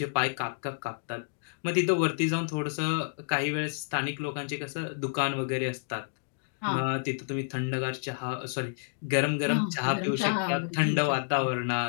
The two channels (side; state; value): right; silent; digital silence